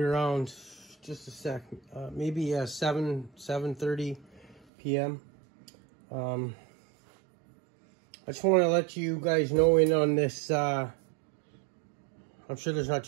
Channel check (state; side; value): drops out; left; at 4.7 s